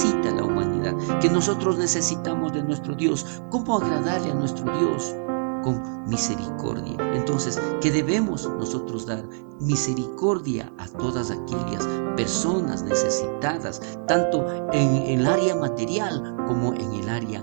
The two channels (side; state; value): left; silent; 62 dB below the other